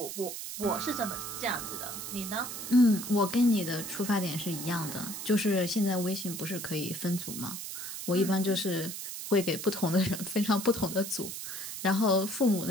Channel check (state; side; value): noise; right; hiss, 7 dB below the sound